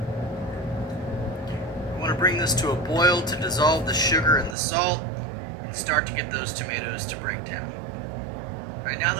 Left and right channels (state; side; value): drops out; left; at 4.5 s